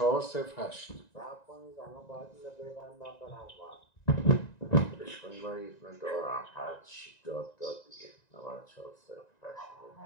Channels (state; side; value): late; right; 1.9 ms